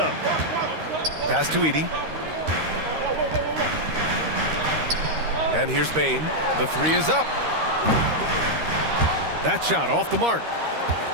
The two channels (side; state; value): left; late; 13 ms